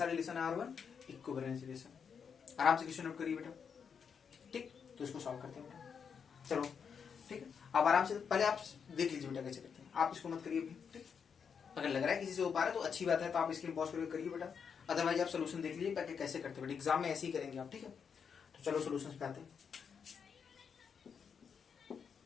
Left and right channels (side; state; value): right; quieter; 6.7 dB